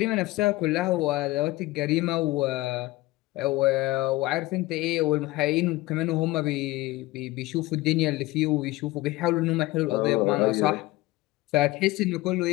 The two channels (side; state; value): right; quieter; 19.0 dB